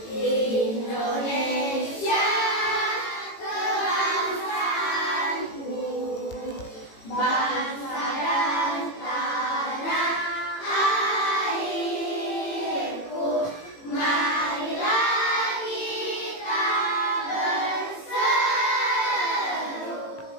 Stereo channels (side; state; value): right; late; 18 ms